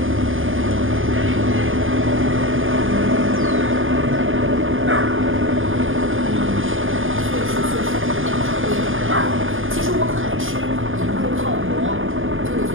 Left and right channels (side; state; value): left; late; 0.58 ms